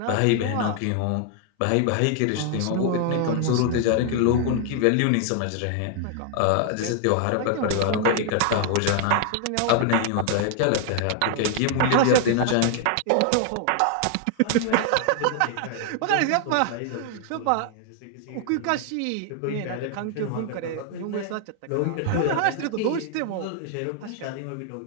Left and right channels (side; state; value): both; different; correlation 0.00